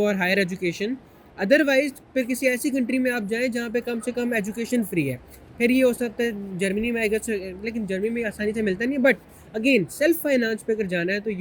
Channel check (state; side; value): identical; both; correlation 1.00